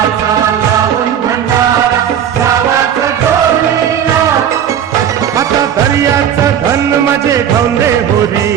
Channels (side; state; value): left; quieter; 9.2 dB